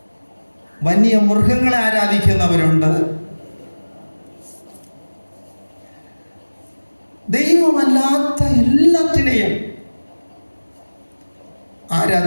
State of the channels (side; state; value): both; inverted; correlation -1.00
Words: വന്യമൃഗങ്ങളെ ആരാധിക്കുന്നവരുണ്ട്, ദൈവമല്ലാത്ത എല്ലാത്തിനെയും